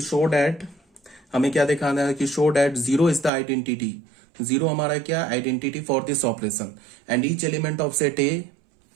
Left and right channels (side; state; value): left; drops out; at 3.3 s